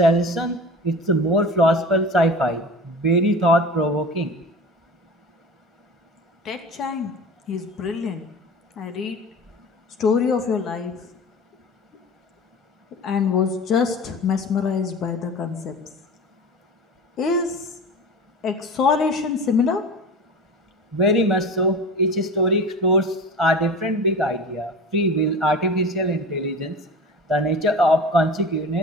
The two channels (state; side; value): normal; both; correlation 0.34